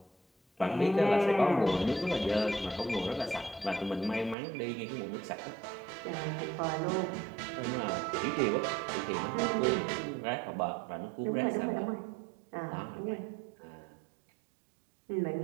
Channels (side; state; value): left; drops out; at 4.4 s